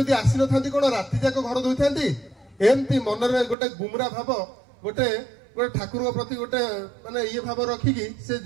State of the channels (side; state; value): left; drops out; at 3.6 s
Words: आसी न थांती कोन राति जाक घर धोइथांती एमती मनरे गोटे गुमरा भाव गोटे गोटे ठाकुर प्रति गोटे माने ये भाव रखिकी से